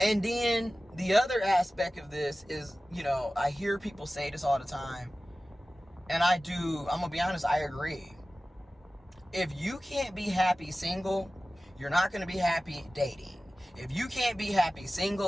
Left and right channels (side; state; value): both; normal; correlation 0.96